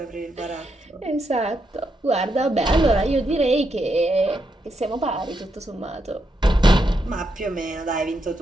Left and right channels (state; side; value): normal; both; correlation 0.81